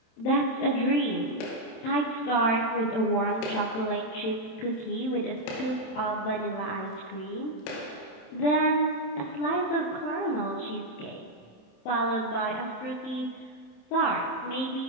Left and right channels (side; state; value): right; late; 27 ms